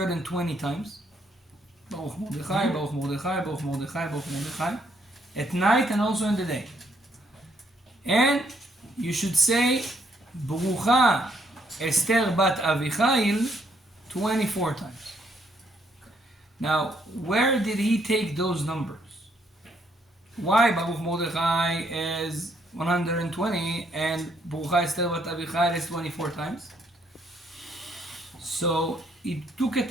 times. Baruch Mordechai, Baruch Mordechai, Baruch Mordechai, Baruch Mordechai. At night and also in the day. And you should say Berucha Esther bat Avihail 24 times. Now, where did he take those numbers? Why Baruch Mordechai is 120 and Berucha Esther bat Avihail is 24 times? So he took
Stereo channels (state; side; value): normal; both; correlation 0.71